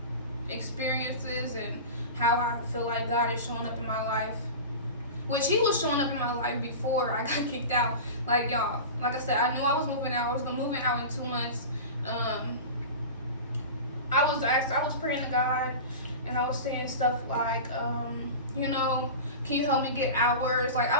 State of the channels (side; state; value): both; inverted; correlation -0.30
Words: experiences and how I feel like God is showing up in my life. Which He was showing up in my life before I got kicked out. Like, y'all, like I said, I knew I was moving out. I was moving out in 2 months. I was praying to God, and I was saying stuff like, can you help me get hours? Like,